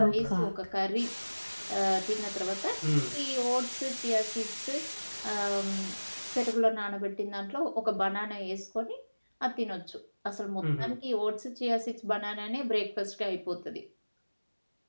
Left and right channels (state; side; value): inverted; both; correlation -1.00